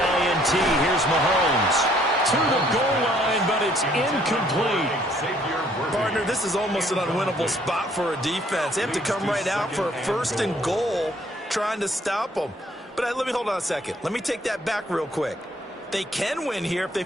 here's Mahomes to the goal line, but it's incomplete. Partner, this is almost an unwinnable spot for a defense. They have to come right out for a 1st and goal trying to stop them. But let me hold on a second. Let me take that back real quick. They can win here if they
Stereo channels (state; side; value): normal; both; correlation 0.63